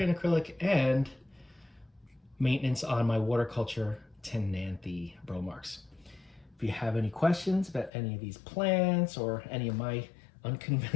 in acrylic, and maintenance on my waterculture Tenanthe Bromarks. If you have any questions about any of these plants or any of my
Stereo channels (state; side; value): drops out; right; at 7.9 s